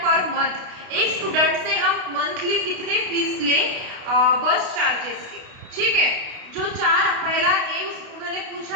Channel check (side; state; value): left; late; 32 ms